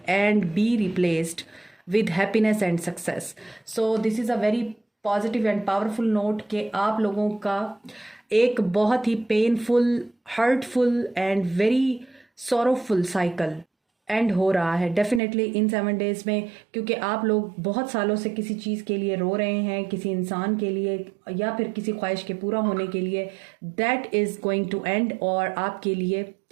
and be replaced with happiness and success. So this is a very positive and powerful note कि आप लोगों का एक बहुत ही painful, hurtful and very sorrowful cycle and हो रहा है डेफिनेटली इन 7 डेज में, क्योंकि आप लोग बहुत सालों से किसी चीज़ के लिए रो रहे हैं, किसी इंसान के लिए या फिर किसी ख्वाहिश के पूरा होने के लिए। That is going to end, और आपके लिए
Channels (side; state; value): left; drops out; at 15.2 s